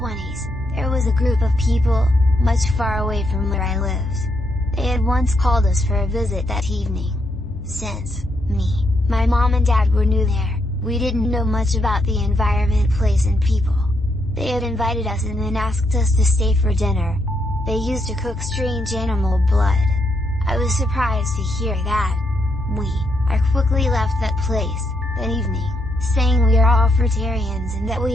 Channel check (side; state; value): left; noise; rumble, 20 dB below the sound